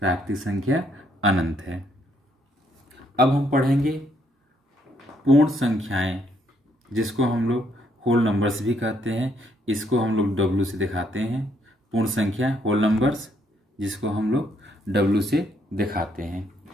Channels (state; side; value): normal; both; correlation 0.71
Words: संख्या अनंत है। अब हम पढ़ेंगे पूर्ण संख्याएं, जिसको हम लोग होल नंबर्स भी कहते हैं। इसको हम लोग W से दिखाते हैं। पूर्ण संख्या होल नंबर्स, जिसको हम लोग W से दिखाते हैं।